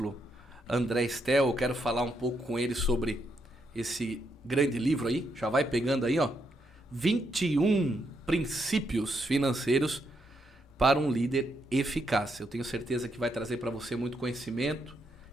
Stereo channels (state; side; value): normal; both; correlation 0.79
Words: André Estel. Eu quero falar um pouco com ele sobre esse grande livro aí, já vai pegando aí, ó, 21 princípios financeiros para um líder eficaz. Eu tenho certeza que vai trazer para você muito conhecimento.